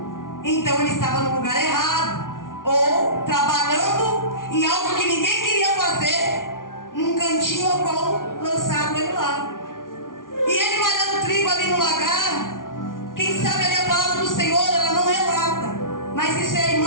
Então ele estava no lugar errado. Ou trabalhando em algo que ninguém queria fazer, num cantinho ao qual lançaram ele lá. E ele malhando trigo ali no lagar, quem sabe ali a palavra do Senhor, ela não relata. Mas isso é a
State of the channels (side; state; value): right; late; 0.89 ms